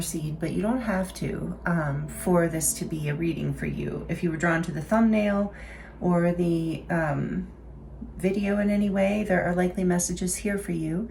but you don't have to for this to be a reading for you. If you were drawn to the thumbnail or the video in any way, there are likely messages here for you,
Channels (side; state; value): both; identical; correlation 1.00